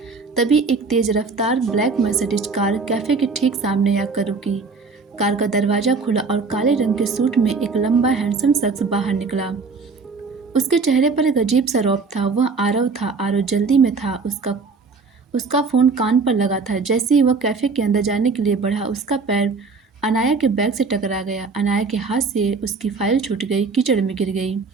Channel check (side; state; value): left; quieter; 4.4 dB